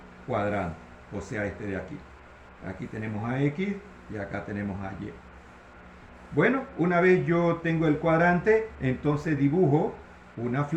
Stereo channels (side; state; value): both; identical; correlation 1.00